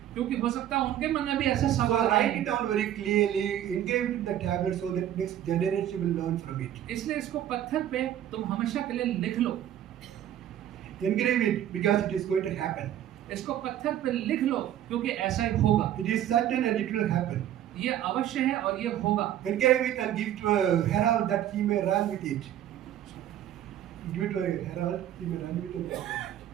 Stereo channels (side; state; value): left; quieter; 11.4 dB